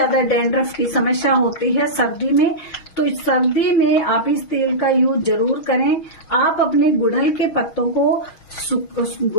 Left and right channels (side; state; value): right; late; 6.3 ms